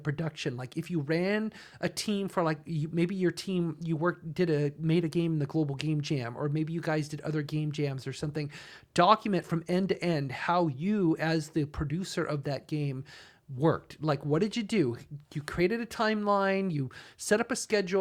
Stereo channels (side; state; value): both; identical; correlation 1.00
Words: Like if you ran a team for maybe your team, made a game in the Global Game Jam, or maybe you guys did other game jams or something. Document from end to end how you, as the producer of that game, worked. Like, what did you do? You created a timeline, you set up a